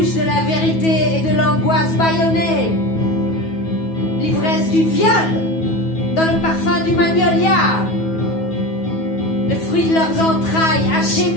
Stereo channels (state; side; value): late; right; 9.3 ms